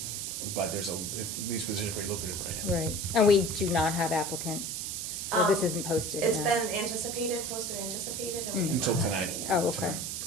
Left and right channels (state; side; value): noise; right; hiss, 4 dB below the sound